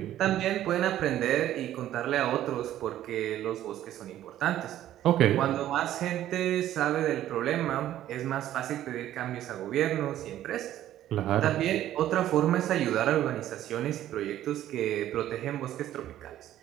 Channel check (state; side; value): quieter; left; 12.6 dB